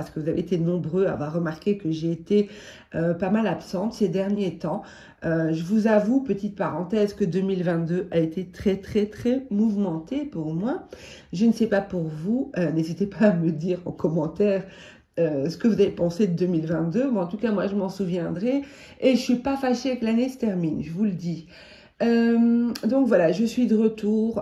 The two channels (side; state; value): both; identical; correlation 1.00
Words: que vous avez été nombreux à avoir remarqué que j'ai été pas mal absente ces derniers temps. Je vous avoue, petite parenthèse, que 2022 a été très mouvementé pour moi. Je ne sais pas pour vous, n'hésitez pas à me dire en commentaire ce que vous avez pensé de 2022. Bon, en tout cas, moi, je m'en souviendrai et je ne suis pas fâchée que l'année se termine, je vous le dis. Donc voilà, je suis de